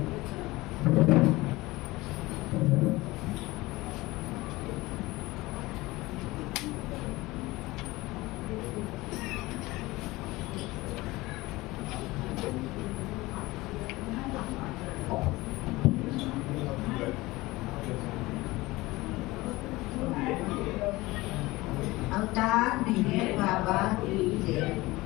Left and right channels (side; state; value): right; quieter; 20.3 dB